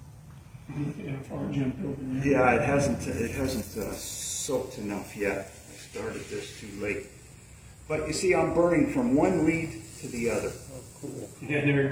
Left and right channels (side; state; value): both; identical; correlation 1.00